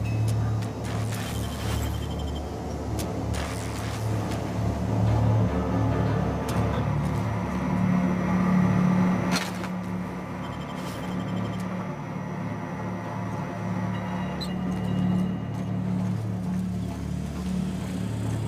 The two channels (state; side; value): identical; both; correlation 1.00